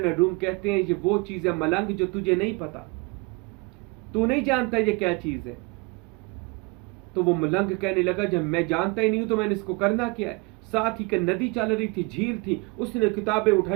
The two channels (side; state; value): left; quieter; 28.6 dB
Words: रूम कहते हैं ये वो चीज़ है मलंग जो तुझे नहीं पता, तू नहीं जानता ये क्या चीज़ है। तो वो मलंग कहने लगा जब मैं जानता ही नहीं हूं तो मैंने इसको करना क्या है। साथ ही नदी चल रही थी, झील थी, उसने किताबें